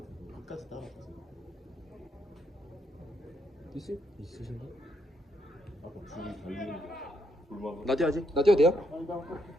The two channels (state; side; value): normal; both; correlation 0.76